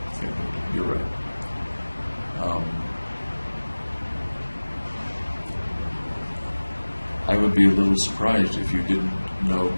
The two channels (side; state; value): both; inverted; correlation -1.00